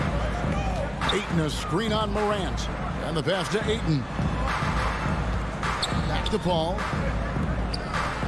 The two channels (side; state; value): both; identical; correlation 1.00